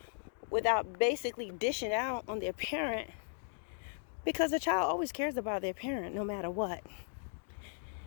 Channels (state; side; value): silent; right; digital silence